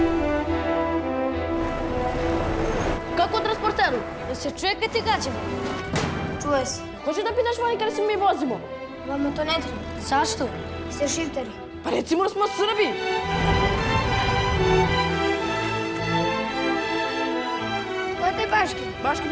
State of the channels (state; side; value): identical; both; correlation 1.00